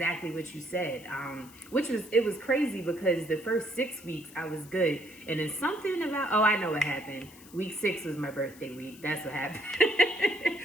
what you said, it was crazy because the first 6 weeks I was good. And then something about, I know what happened. Week 6 was my birthday week. That's what happened.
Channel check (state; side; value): noise; left; hiss, 21 dB below the sound